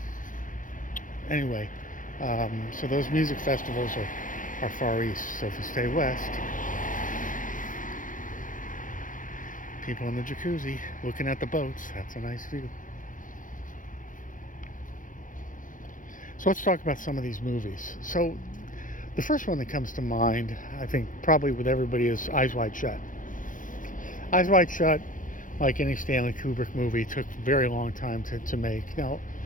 Anyway, so those music festivals are far east. So if you stay west, people in the jacuzzi looking at the boats, that's a nice view. So let's talk about some of these movies. So the first one that comes to mind, I think probably with everybody, is Eyes Wide Shut. Eyes Wide Shut, like any Stanley Kubrick movie, took a very long time to make. Now,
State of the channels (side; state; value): right; late; 0.38 ms